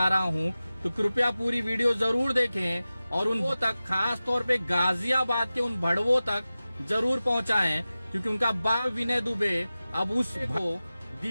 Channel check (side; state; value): both; inverted; correlation -0.95